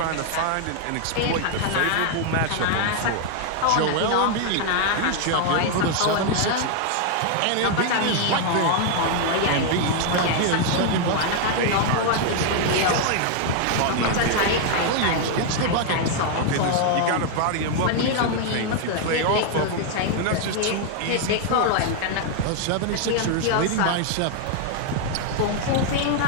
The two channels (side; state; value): both; different; correlation 0.00